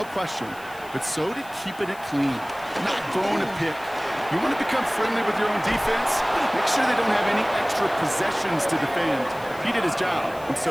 question. But so did keeping it clean, not throwing a pick. You want to become friendly with your own defense? Make sure they don't have any extra possessions to defend. He did his job, and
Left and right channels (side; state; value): left; noise; hiss, 22 dB below the sound